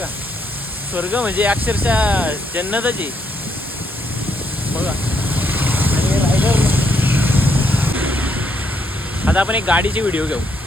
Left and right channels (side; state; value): both; normal; correlation 0.74